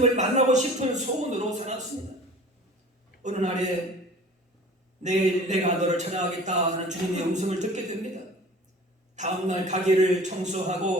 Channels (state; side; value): normal; both; correlation 0.44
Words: 만나고 싶은 소원으로 살았습니다. 어느 날에 내일 내가 너를 찾아가겠다 하는 주님의 음성을 듣게 됩니다. 다음날 가게를